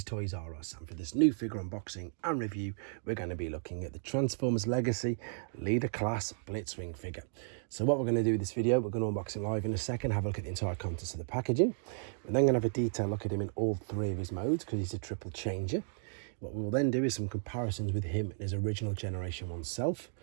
Toys R Us, and for this new figure unboxing and review we're going to be looking at the Transformers Legacy Leader Class Blitzwing figure. So what we're going to do with this video, we're going to unbox him live in a second, have a look at the entire contents of the packaging. We're then going to have a detailed look at him in all three of his modes because he's a triple changer. What we'll then do is some comparisons with him and his original Generation 1 self,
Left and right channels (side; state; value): left; silent; digital silence